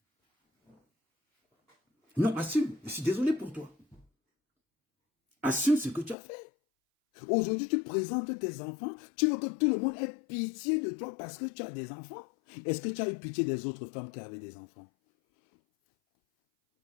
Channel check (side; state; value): right; drops out; at 6.2 s